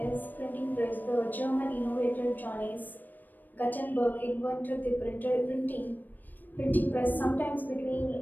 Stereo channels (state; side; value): late; right; 0.089 ms